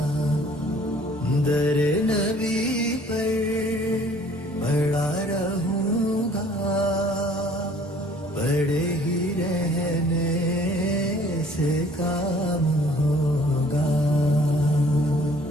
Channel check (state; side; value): normal; both; correlation 0.56